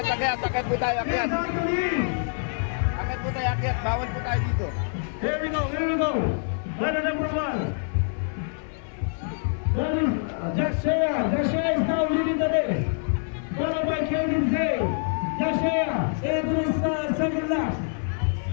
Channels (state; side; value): silent; right; 59 dB below the other